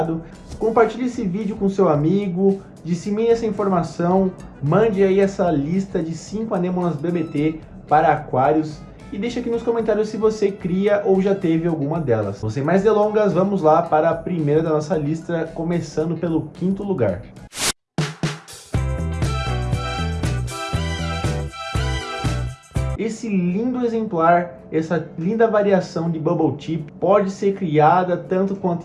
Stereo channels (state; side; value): identical; both; correlation 1.00